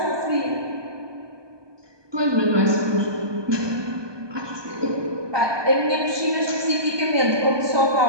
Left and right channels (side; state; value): left; late; 1.2 ms